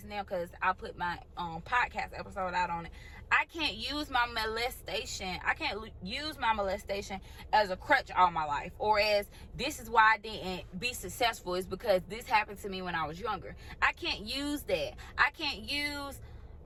now because I put my podcast episode out on it. I can't use my molestation. I can't use my molestation as a crutch all my life, or as this is why I didn't be successful, is because this happened to me when I was younger. I can't use that. I can't use,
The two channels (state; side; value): identical; both; correlation 1.00